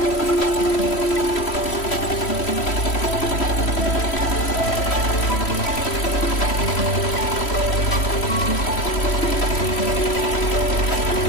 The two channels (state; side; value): late; right; 3.1 ms